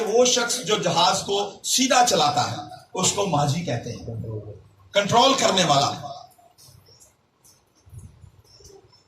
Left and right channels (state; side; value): identical; both; correlation 1.00